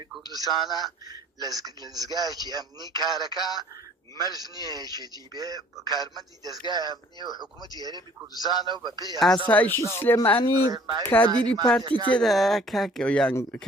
کوردستانە لەزگایەکی ئەمنی کارەکە مەرج نییە یەکێتی بێ کارمەندی دەستگای ئەمنی و حکوومەتی هەرێمی کوردستانە و بە پێی ئاسایشی سلێمانی کادیری پارتی تێدا کاکە یان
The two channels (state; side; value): normal; both; correlation 0.55